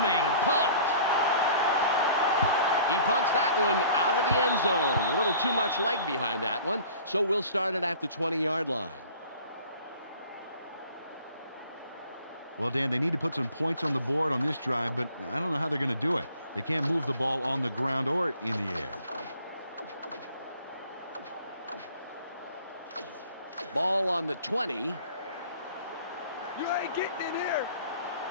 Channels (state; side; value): inverted; both; correlation -0.49